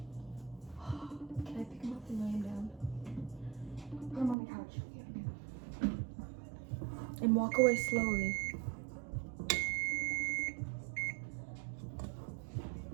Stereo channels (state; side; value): drops out; left; at 4.4 s